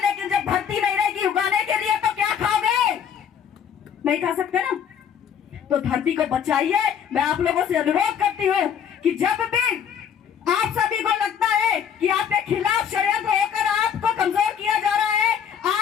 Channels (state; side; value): quieter; right; 8.1 dB